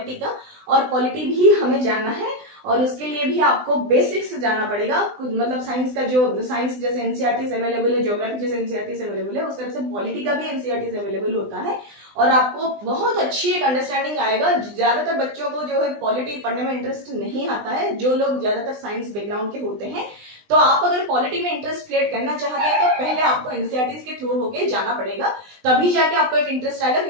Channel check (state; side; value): late; left; 20 ms